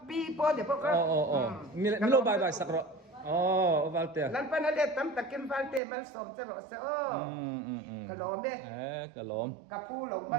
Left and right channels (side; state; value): left; drops out; at 5.8 s